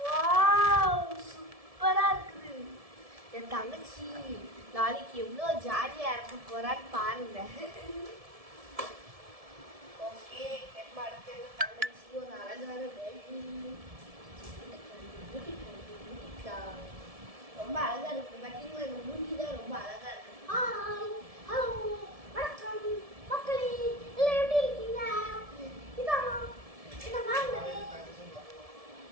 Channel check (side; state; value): left; late; 1.7 ms